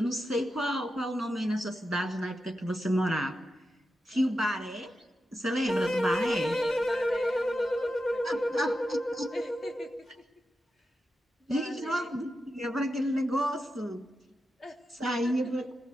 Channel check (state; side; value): normal; both; correlation 0.89